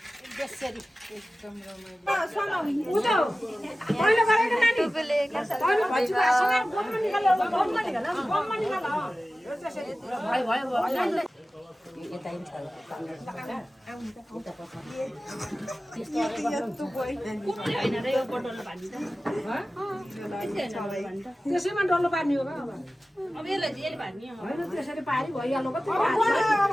त्यसैमा डल्लो पार्ने हो अब यसलाई पार्ने होइन त्यसरी पारी भइहाल्नु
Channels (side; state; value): both; normal; correlation 0.96